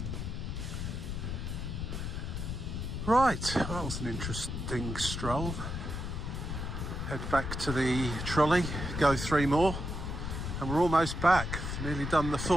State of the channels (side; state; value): left; noise; rumble, 4 dB below the sound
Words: Right, that was an interesting stroll. Head back to the trolley, go 3 more, and we're almost back. Nearly done the